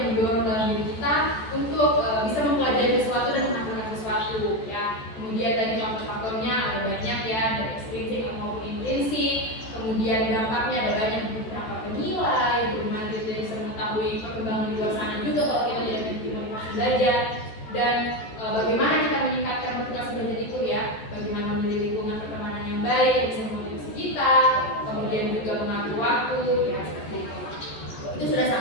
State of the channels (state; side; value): late; right; 14 ms